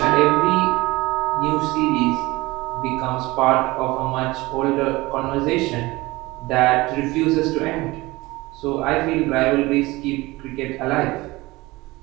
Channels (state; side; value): quieter; left; 21.0 dB